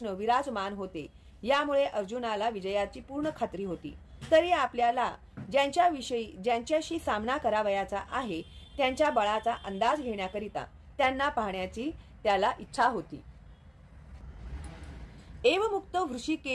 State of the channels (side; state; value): both; identical; correlation 1.00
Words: विराजमान होते, यामुळे अर्जुनाला विजयाची पूर्ण खात्री होती. तरी आपल्याला ज्यांच्याशी सामना करावयाचा आहे त्यांच्या बळाचा अंदाज घेण्याकरिता त्यांना पाहण्याची त्याला इच्छा होती. एवमुक्त